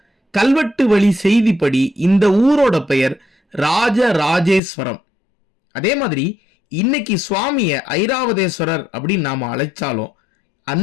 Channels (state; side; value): drops out; right; at 4.6 s